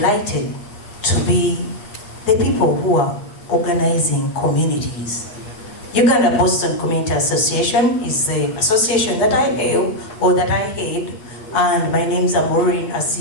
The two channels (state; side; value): late; right; 8.5 ms